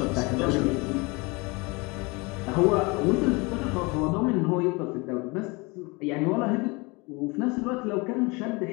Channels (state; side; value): quieter; right; 26.7 dB